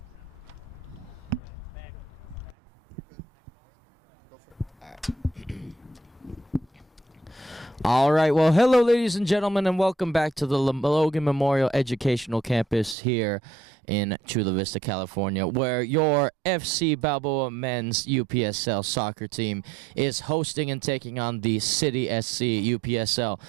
All right, well, hello, ladies and gentlemen, and welcome back to the Logan Memorial Educational Campus here in Chula Vista, California, where your FC Balboa men's UPSL soccer team is hosting and taking on the City SC UPSL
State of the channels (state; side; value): drops out; left; at 13.0 s